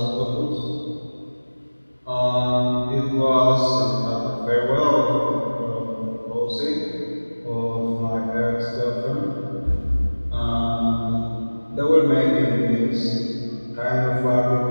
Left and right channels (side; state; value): both; inverted; correlation -1.00